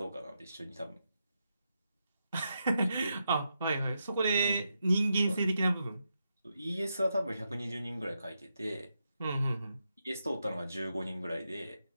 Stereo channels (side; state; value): both; inverted; correlation -0.85